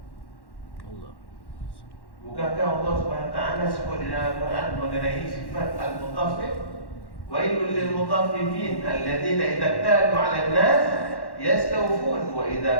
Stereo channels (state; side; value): late; right; 1.1 ms